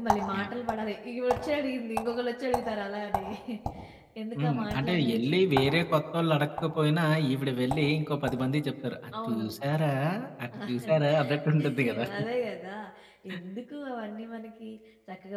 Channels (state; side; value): identical; both; correlation 1.00